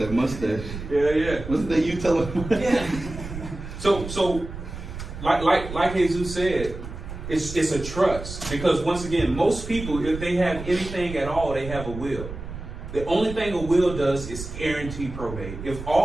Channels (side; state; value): right; noise; rumble, 10 dB below the sound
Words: mustache. Yeah. Wasn't that you telling him? Yeah. So, like Jesus said, it's a trust, because once again, most people, if they have anything at all, they have a will. The only thing a will does is guarantee probate. If